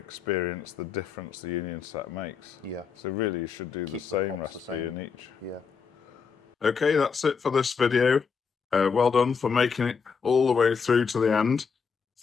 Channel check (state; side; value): quieter; right; 5.8 dB